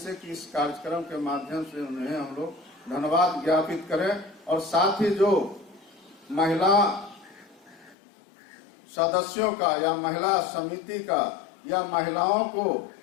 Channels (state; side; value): drops out; right; at 8.0 s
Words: कि इस कार्यक्रम के माध्यम से उन्हें हम लोग धन्यवाद ज्ञापित करें। और साथ ही जो महिला सदस्यों का या महिला समिति का या महिलाओं को